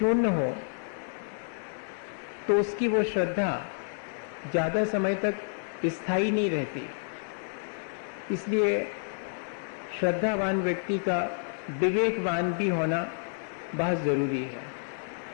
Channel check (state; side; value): silent; right; digital silence